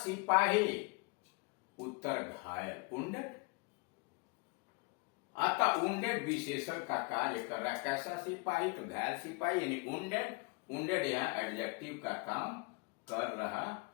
उत्तर घायल, वुंडेड। अतः वुंडेड विशेषण का कार्य कर रहा है। कैसा सिपाही, तो घायल सिपाही, यानी वुंडेड। वुंडेड यहां एडजेक्टिव का काम कर रहा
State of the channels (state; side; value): quieter; right; 29.1 dB